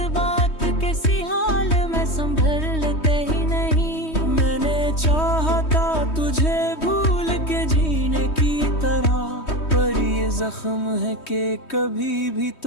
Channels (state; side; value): late; right; 3.2 ms